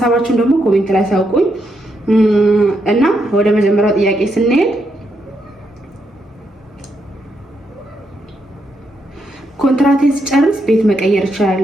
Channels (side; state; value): both; normal; correlation 0.80